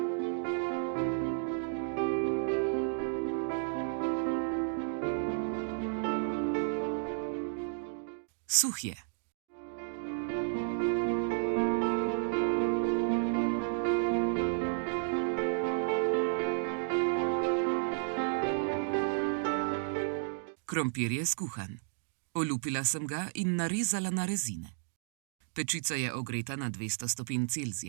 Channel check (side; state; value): left; silent; digital silence